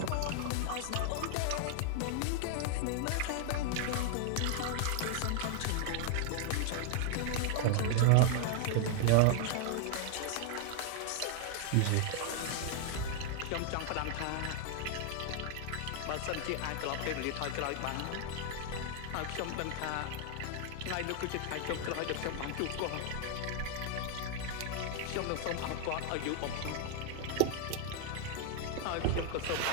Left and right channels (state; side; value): different; both; correlation 0.00